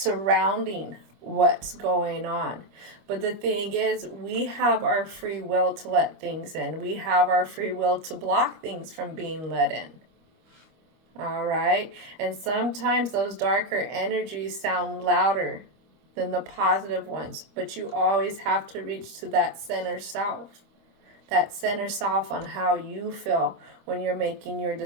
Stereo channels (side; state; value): left; late; 25 ms